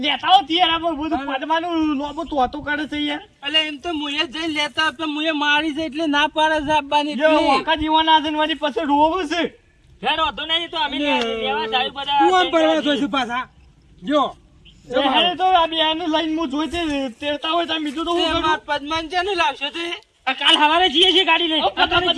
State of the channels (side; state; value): both; identical; correlation 1.00